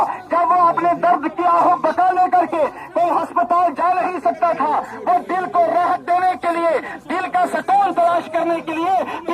جب وہ اپنے درد کی آہو بکا لے کر کے کوئی ہسپتال جا نہیں سکتا تھا، وہ دل کو راحت دینے کے لیے، دل کا سکون تلاش کرنے کے لیے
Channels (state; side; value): identical; both; correlation 1.00